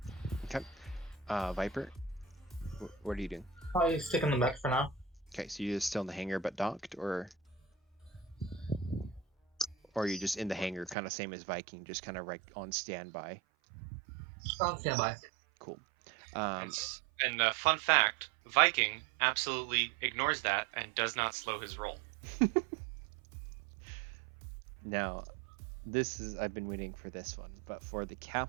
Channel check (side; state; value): left; drops out; at 11.0 s